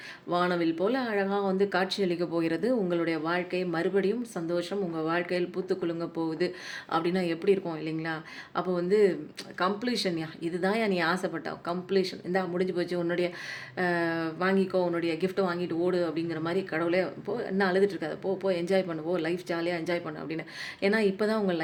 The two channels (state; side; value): identical; both; correlation 1.00